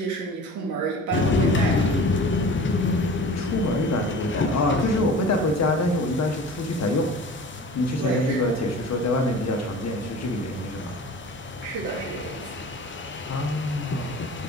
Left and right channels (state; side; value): normal; both; correlation 0.40